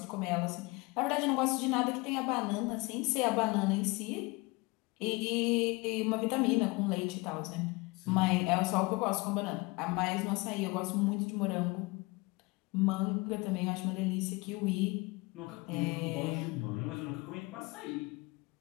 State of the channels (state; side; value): quieter; right; 25.2 dB